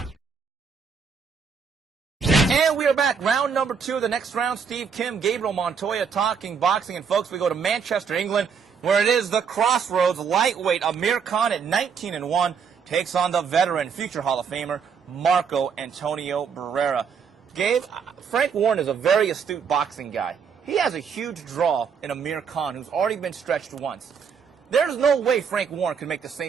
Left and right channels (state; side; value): quieter; left; 6.3 dB